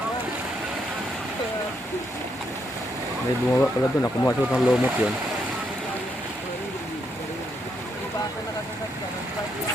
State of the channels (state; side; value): normal; both; correlation 0.77